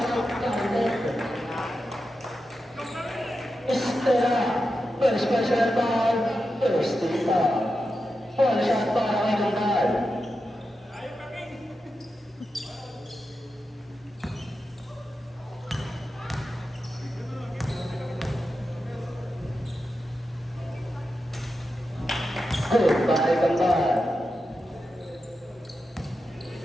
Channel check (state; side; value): normal; both; correlation 0.89